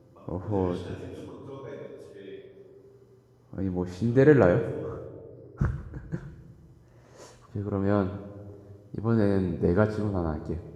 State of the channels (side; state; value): both; identical; correlation 1.00